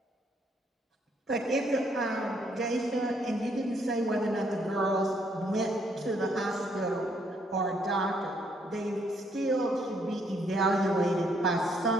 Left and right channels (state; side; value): normal; both; correlation 0.70